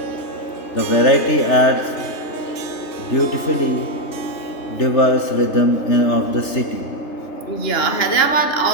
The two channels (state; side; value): late; right; 3.3 ms